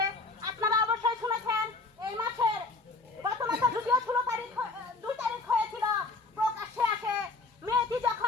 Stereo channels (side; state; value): right; quieter; 3.5 dB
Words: আপনারা অবশ্যই শুনেছেন এই মাসের গত মাসে যদিও 2 তারিখ হয়েছিল, প্রকাশ্যে আসে মেয়েটি